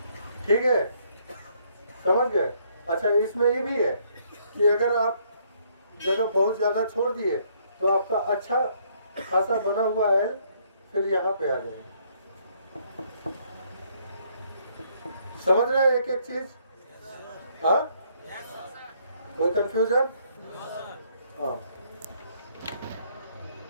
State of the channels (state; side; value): inverted; both; correlation -0.68